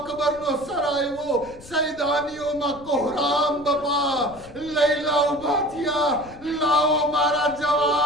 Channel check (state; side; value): noise; left; rumble, 20 dB below the sound